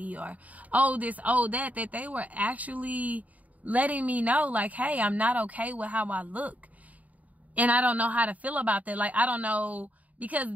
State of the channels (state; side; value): late; left; 0.072 ms